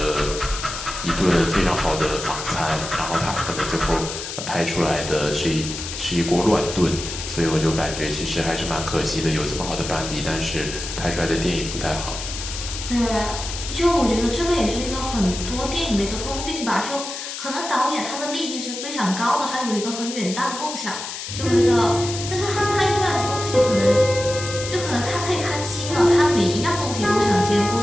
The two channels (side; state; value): left; noise; hiss, 7 dB below the sound